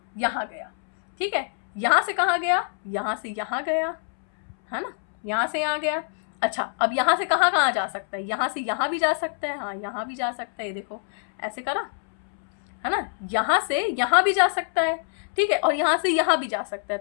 यहाँ गया, ठीक है। यहाँ से कहाँ गया, यहाँ से यहाँ गया, है ना, यहाँ से यहाँ गया। अच्छा अब यहाँ से कहाँ कहाँ जा सकता है, यहाँ से यहाँ भी जा सकता है, हाँ यहाँ भी जा सकता है, ये देखो ऐसे करा, है ना। यहाँ से यहाँ भी जा सकता है, ठीक है, और यहाँ से यहाँ भी जा सकता है,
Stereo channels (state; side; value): silent; right; 62 dB below the other